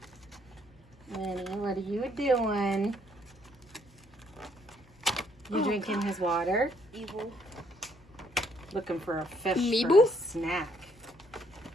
Lenny, what are you doing? You drinking his water? Evil. Looking for a fish Meeble? for a snack.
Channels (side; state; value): both; normal; correlation 0.68